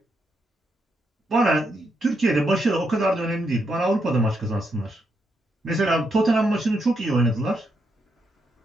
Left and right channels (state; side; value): normal; both; correlation 0.80